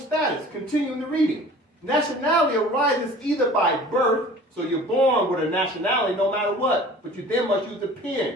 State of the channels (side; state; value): both; normal; correlation 0.45